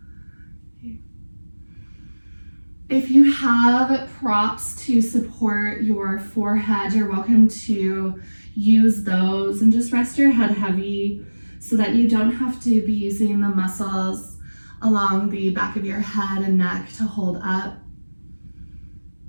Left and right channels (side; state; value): both; inverted; correlation -1.00